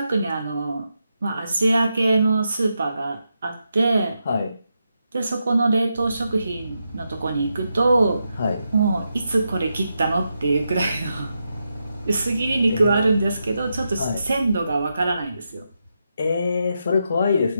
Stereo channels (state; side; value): inverted; both; correlation -0.85